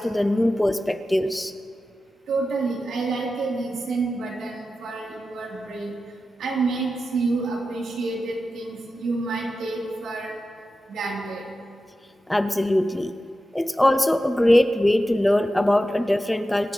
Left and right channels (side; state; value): both; normal; correlation 0.92